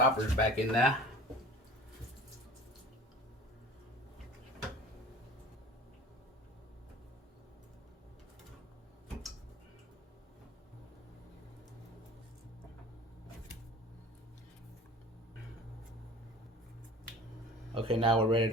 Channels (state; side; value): normal; both; correlation 0.42